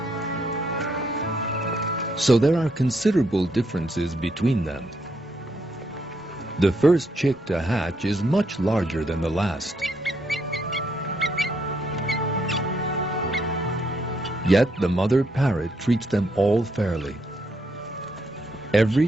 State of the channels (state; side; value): normal; both; correlation 0.75